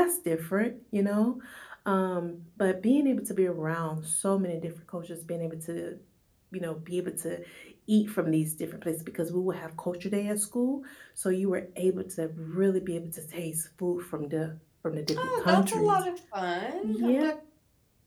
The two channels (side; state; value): both; identical; correlation 1.00